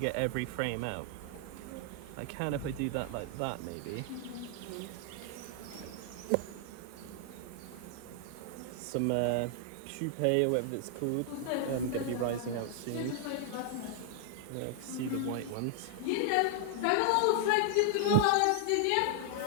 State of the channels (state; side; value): different; both; correlation 0.00